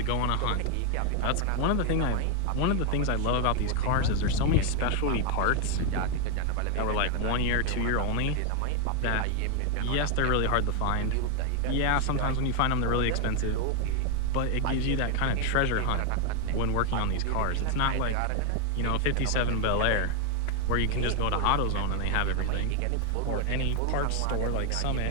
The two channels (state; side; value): different; both; correlation 0.01